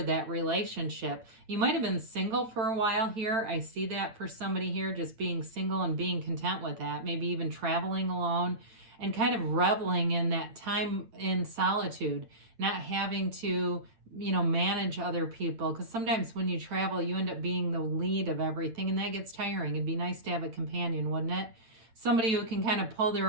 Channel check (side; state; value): left; late; 8.8 ms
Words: that relationship. You might have been single for a while here. I see that for somebody here, just being single and being content with that, maybe even traveling alone and kind of reveling in that time in solitude, not having to, manage other people. Because sometimes when you travel, you end up being the lead of everything, and that gets tiring. It'd be nice to have a companion, wouldn't it? Somebody who can kind of pull